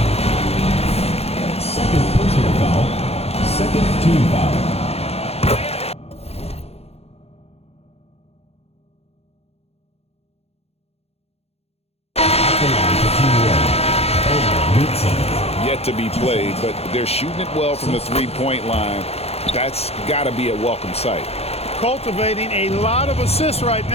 Second personal foul. Second team foul. Yet to be played, but they're shooting it well from the 3-point line. That's got to be a welcome sight. Cultivating a lot of assists right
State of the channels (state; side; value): late; right; 0.30 ms